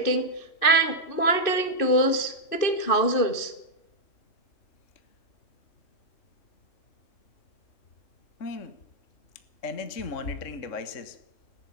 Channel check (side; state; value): right; late; 2.6 ms